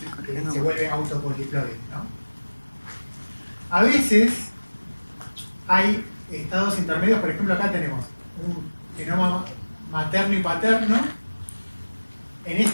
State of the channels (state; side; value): inverted; both; correlation -1.00